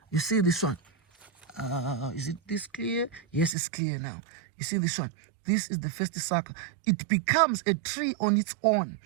You see this one? Is it this clear? Yes, it's clear now. You see this one? This is the first sucker. It becomes a tree on its own.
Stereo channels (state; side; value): drops out; left; at 3.6 s